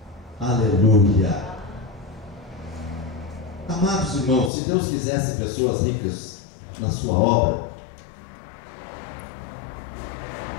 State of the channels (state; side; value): drops out; right; at 4.5 s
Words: Aleluia. Amados irmãos, se Deus quisesse pessoas ricas na sua obra,